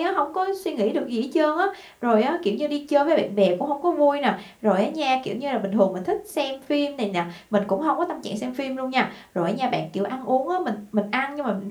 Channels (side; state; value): both; identical; correlation 1.00